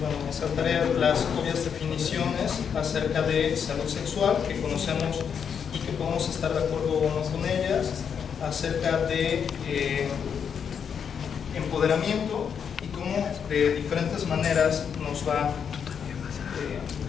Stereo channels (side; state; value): right; quieter; 7.2 dB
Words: me saltaré las obvias definiciones acerca de salud sexual que conocemos y que podemos estar de acuerdo o no con ellas, acerca de empoderamiento y cómo de diferentes maneras nos va